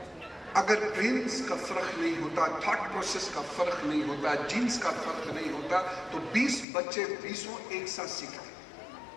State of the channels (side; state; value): right; drops out; at 6.7 s